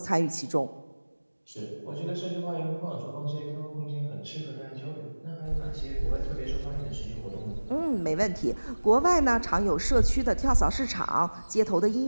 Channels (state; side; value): inverted; both; correlation -1.00